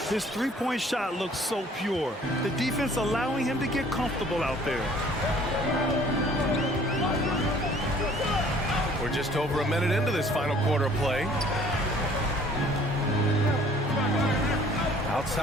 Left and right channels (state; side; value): normal; both; correlation 0.55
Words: His three-point shot looks so pure. The defense allowing him to get comfortable out there. We're just over a minute into this final quarter of play.